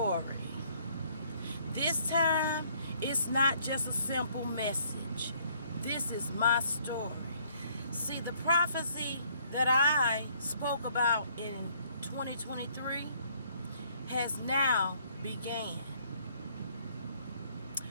This time, it's not just a simple message. This is my story. See, the prophecy that I spoke about in 2023 has now began.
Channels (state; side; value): inverted; both; correlation -0.64